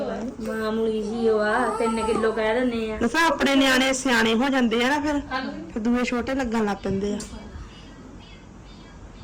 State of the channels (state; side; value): identical; both; correlation 1.00